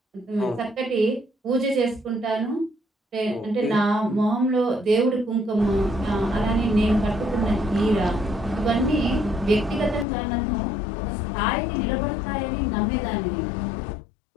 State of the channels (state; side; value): drops out; right; at 10.1 s